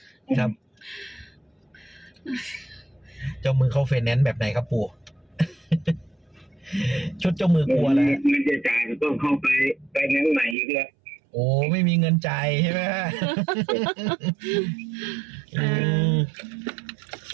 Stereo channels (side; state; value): left; drops out; at 10.6 s